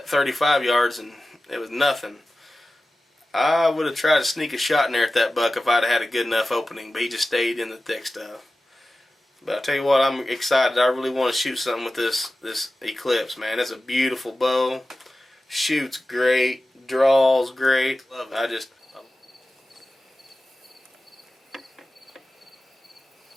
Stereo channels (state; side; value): normal; both; correlation 0.95